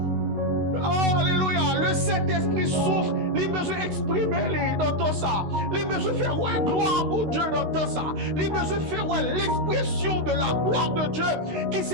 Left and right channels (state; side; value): late; left; 16 ms